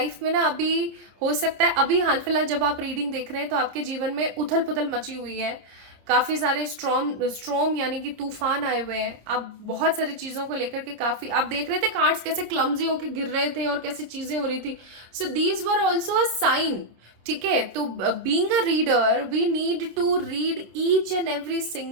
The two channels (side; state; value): left; late; 26 ms